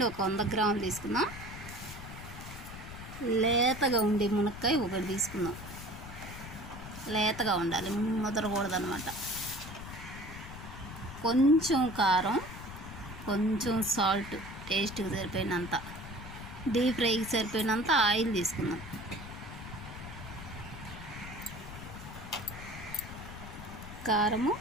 ఒక 100 గ్రాములు తీసుకుందాం. లేతగా ఉండే మునక్కాయ ఒకటి తీసుకుందాం. లేతగా ఉండాలి, ముదరకూడదు అన్నమాట. కొంచెం కారం, కొంచెం సాల్ట్, టేస్ట్కి సరిపోయినంత, డీప్ ఫ్రైకి సరిపోయినంత ఆయిల్ తీసుకుందాం. కారము,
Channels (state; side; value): noise; left; rumble, 12 dB below the sound